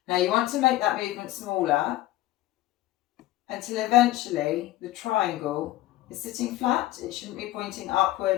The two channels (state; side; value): quieter; right; 15.9 dB